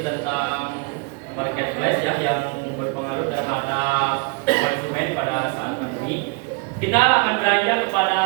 tentang marketplace ya, yang berpengaruh terhadap konsumen pada saat ini, kita akan beranjak kepada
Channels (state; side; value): quieter; left; 31.8 dB